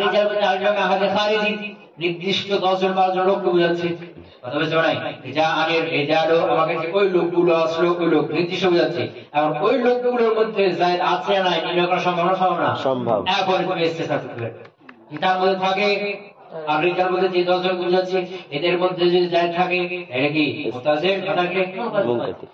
রিজাল বলতে আরেকটা আহাদে খারিজি, নির্দিষ্ট 10 জন 12 জন লোককে বোঝাচ্ছে। কথা বুঝতে পারো নাই? জানি রিজালু, আমার কাছে ওই লোকগুলো আসলো, ওই লোক নির্দিষ্ট বোঝাচ্ছে। এখন ওই লোকগুলোর মধ্যে যায়েদ আছে না নির্ণয় করা সম্ভব না? সম্ভব না, সম্ভব। এখন তুমি ইস্তিসনা করতে পারবে, তার মধ্যে থাকে আর রিজাল বলতে যে 10 জন বুঝাচ্ছে, এদের মধ্যে যদি যায়েদ থাকে এটা কি মুত্তাসিল, কথাকে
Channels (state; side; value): identical; both; correlation 1.00